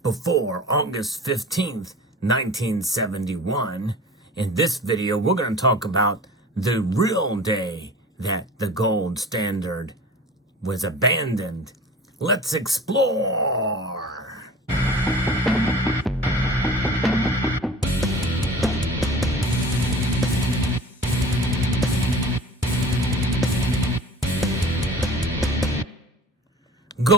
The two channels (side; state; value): both; normal; correlation 0.42